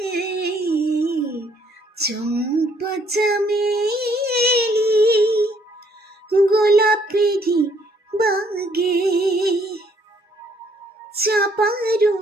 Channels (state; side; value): normal; both; correlation 0.66